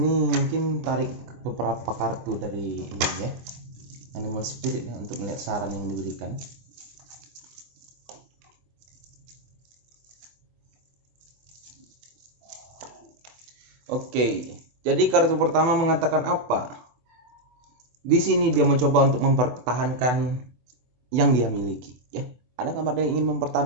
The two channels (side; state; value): left; late; 24 ms